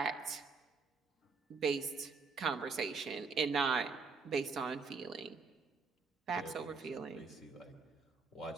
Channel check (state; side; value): quieter; left; 4.7 dB